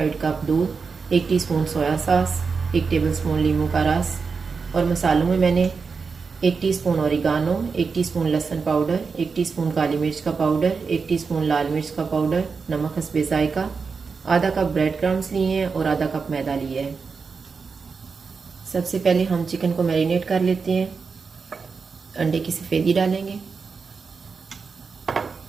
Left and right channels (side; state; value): left; quieter; 5.1 dB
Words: कप दूध, 1 टीस्पून सोया सॉस, 1 टेबलस्पून नींबू का रस। और मसालों में मैंने 1 टीस्पून ओरिगानो, 1 टीस्पून लहसुन पाउडर, 1 टीस्पून काली मिर्च का पाउडर, 1 टीस्पून लाल मिर्च का पाउडर, नमक हस्बे जायका, आधा कप ब्रेड क्रम्स लिए हैं और आधा कप मैदा लिया है। सबसे पहले हम चिकन को मैरिनेट कर लेते हैं। अंडे की सफ़ेदी डालेंगे,